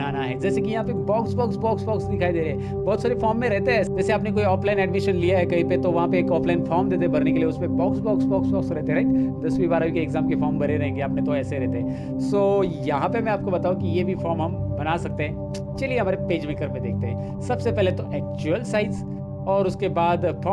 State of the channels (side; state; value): both; identical; correlation 1.00